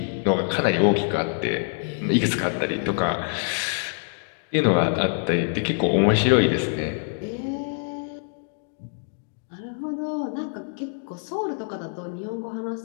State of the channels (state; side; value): silent; right; digital silence